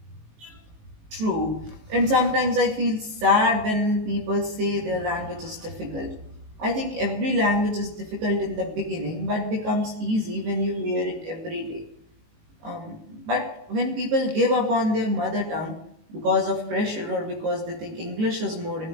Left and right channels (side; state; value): left; late; 19 ms